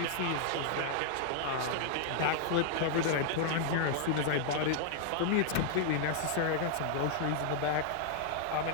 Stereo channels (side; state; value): both; different; correlation -0.01